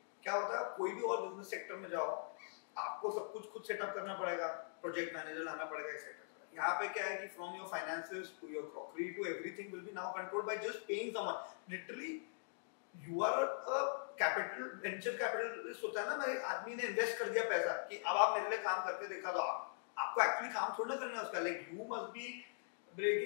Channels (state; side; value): silent; right; digital silence